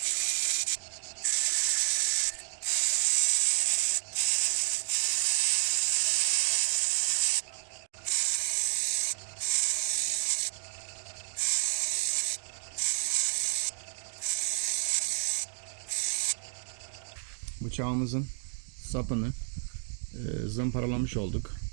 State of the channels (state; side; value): silent; left; digital silence